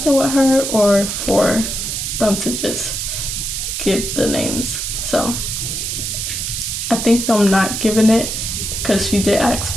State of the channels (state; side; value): noise; right; hiss, 3 dB below the sound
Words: with her, or for them to just give the names? So I think them not giving it, because she did ask